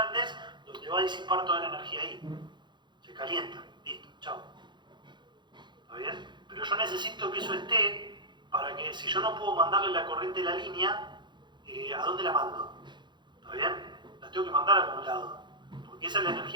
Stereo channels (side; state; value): left; late; 0.22 ms